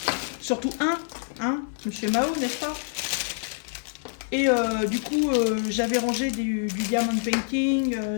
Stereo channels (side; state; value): right; silent; digital silence